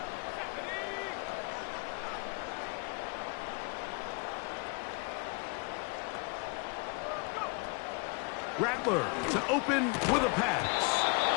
Rattler to open with a pass.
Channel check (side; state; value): right; quieter; 32.3 dB